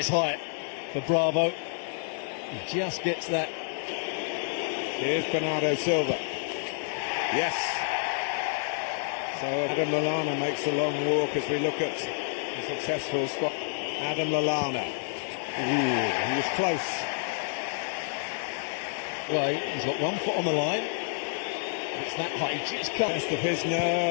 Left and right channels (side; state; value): right; silent; digital silence